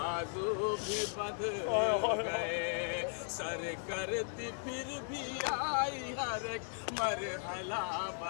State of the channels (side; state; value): right; silent; 53 dB below the other